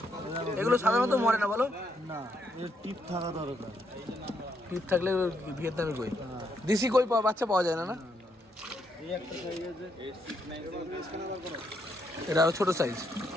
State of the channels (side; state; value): both; normal; correlation 0.76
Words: এগুলো সাধারণত মরে না বলো? না, এর টিপ থাকা দরকার। টিপ থাকলে ভিয়েতনামি কই। দেশি কই বাচ্চা পাওয়া যায় না? না, এই একটা সাইজ আছে, এটা আরো ছোট সাইজ।